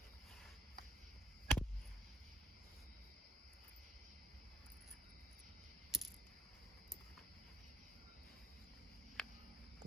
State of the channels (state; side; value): normal; both; correlation 0.63